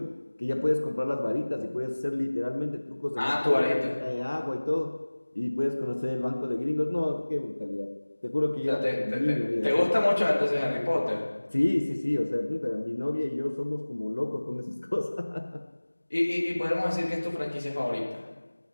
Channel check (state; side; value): inverted; both; correlation -1.00